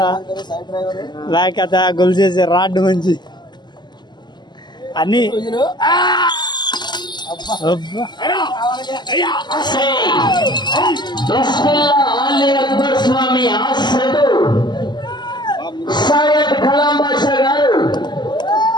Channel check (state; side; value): late; right; 0.21 ms